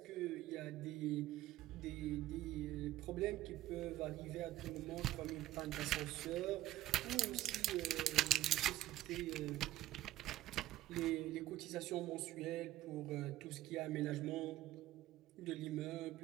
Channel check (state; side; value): quieter; left; 14.9 dB